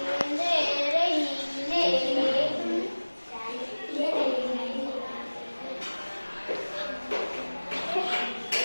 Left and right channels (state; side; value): inverted; both; correlation -1.00